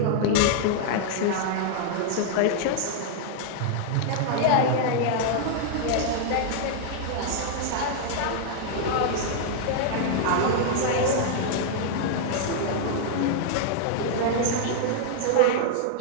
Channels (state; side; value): different; both; correlation -0.01